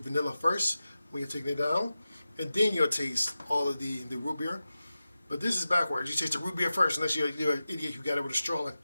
first when you're taking it down, and then you'll taste all of the root beer. But this is backwards. You taste the root beer first, unless you're an idiot who got it with a straw,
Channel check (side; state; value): both; inverted; correlation -0.94